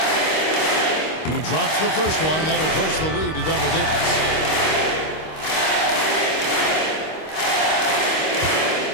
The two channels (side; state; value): right; late; 26 ms